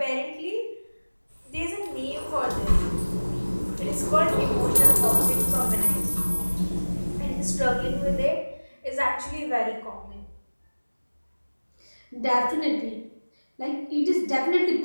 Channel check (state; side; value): inverted; both; correlation -1.00